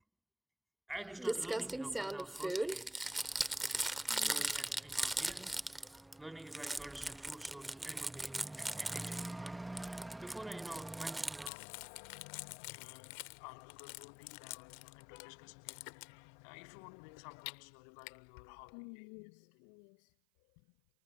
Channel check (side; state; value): right; drops out; at 11.5 s